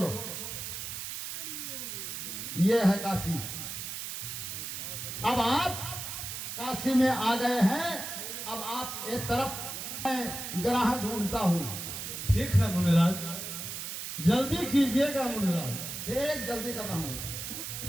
ये है काशी। अब आप काशी में आ गए हैं, अब आप एक तरफ मैं ग्राह ढूंढता हूं। ठीक है मुनिराज, जल्दी कीजिएगा मुनिराज। ठीक, जल्दी कर रहा हूं।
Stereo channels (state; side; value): noise; right; hiss, 6 dB below the sound